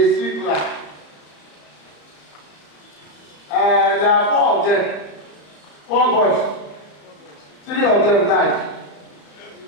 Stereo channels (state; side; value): late; right; 34 ms